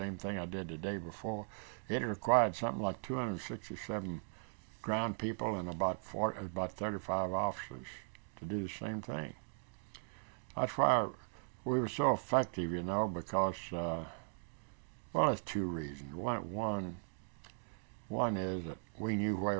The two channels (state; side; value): silent; left; 52 dB below the other